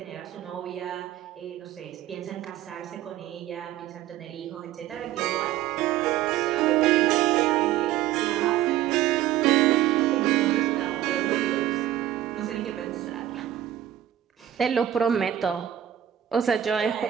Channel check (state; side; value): quieter; left; 12.1 dB